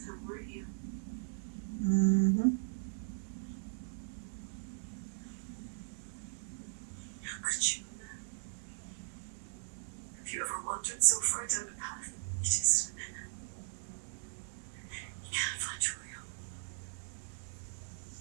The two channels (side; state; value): left; silent; 52 dB below the other